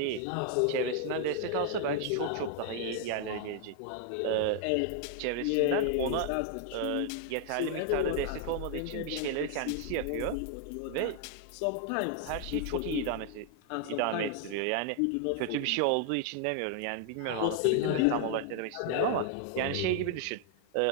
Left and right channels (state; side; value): different; both; correlation 0.00